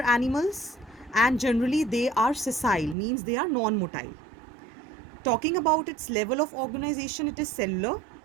animals and generally they are sessile, means they are non-motile. Talking about its level of organization, it is cellular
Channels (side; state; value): left; drops out; at 3.0 s